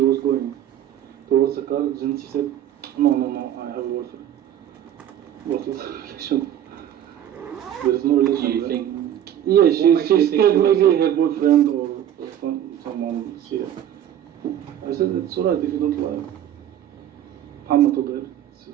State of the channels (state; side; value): quieter; left; 10.8 dB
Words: going towards the car, then she said, no, I have a boyfriend. What is the relation? There is no relation. Do you there. think? Yeah, What she's makes you think scared she was- maybe her boyfriend or someone see her. I said, it's alright if you don't like. Muhammad told her, it's